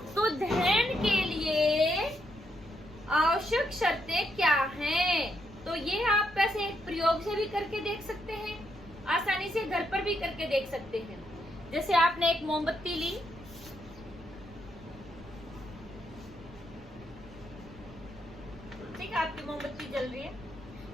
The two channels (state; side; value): noise; right; rumble, 20 dB below the sound